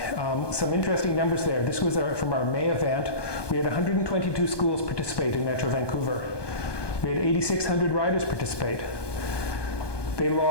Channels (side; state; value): right; late; 1.2 ms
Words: Some interesting numbers there. This was from our May event. We had 122 schools participate in Metro Vancouver. We had 8,600 riders participate. They